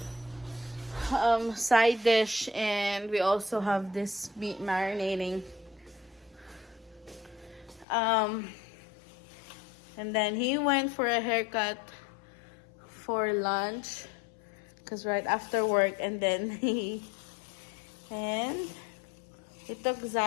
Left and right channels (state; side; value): drops out; right; at 7.9 s